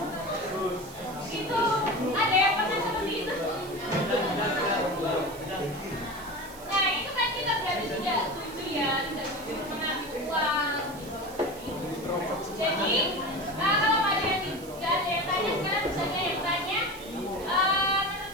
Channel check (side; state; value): right; noise; hiss, 18 dB below the sound